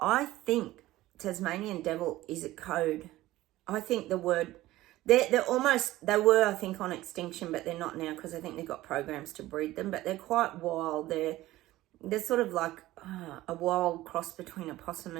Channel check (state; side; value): quieter; left; 16.5 dB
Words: I think Tasmanian devil is a code. I think the they were, I think, on extinction, but they're not now because I think they've got programs to breed them, but they're quite wild. They're sort of like a wild cross between a possum